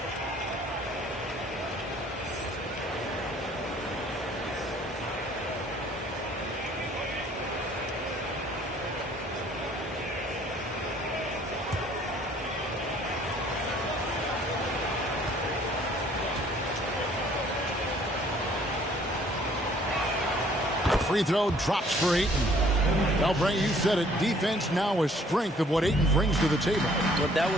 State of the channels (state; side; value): normal; both; correlation 0.58